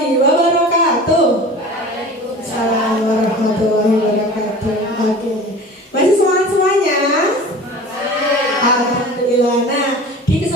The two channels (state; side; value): normal; both; correlation 0.38